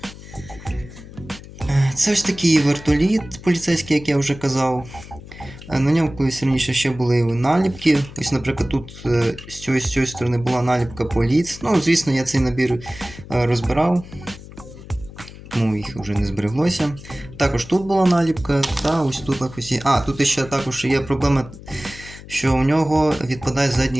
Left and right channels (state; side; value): noise; left; hum, 16 dB below the sound